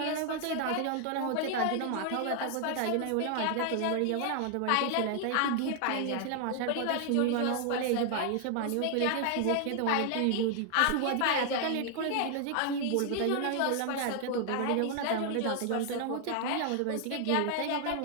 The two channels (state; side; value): different; both; correlation 0.00